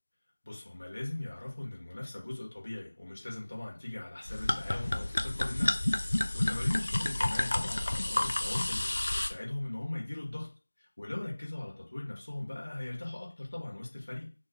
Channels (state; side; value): inverted; both; correlation -1.00